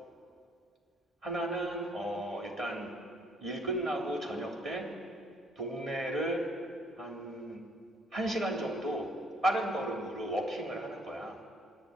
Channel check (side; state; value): both; normal; correlation 0.63